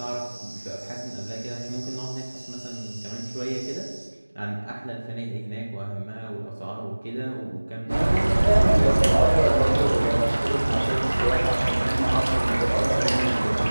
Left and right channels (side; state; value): both; inverted; correlation -1.00